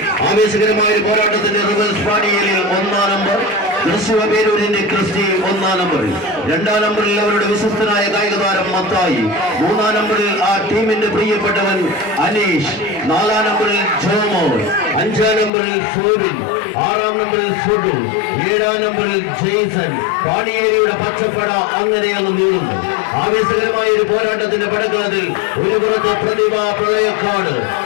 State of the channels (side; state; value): right; drops out; at 15.5 s